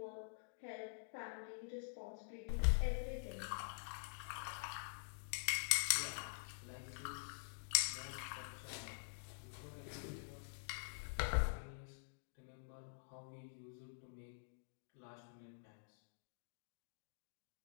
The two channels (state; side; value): silent; right; digital silence